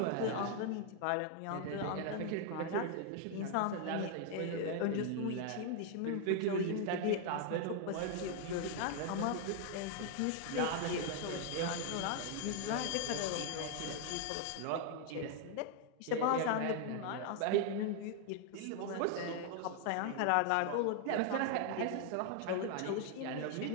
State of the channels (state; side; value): different; both; correlation 0.00